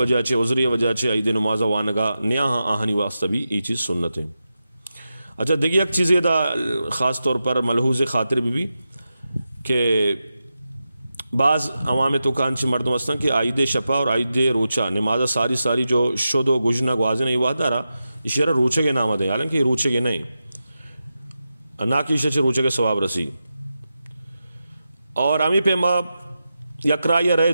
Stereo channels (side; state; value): both; inverted; correlation -0.90